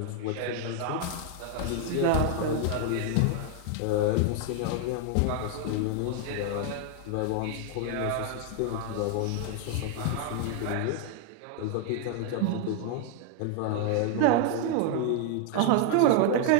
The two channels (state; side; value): different; both; correlation 0.00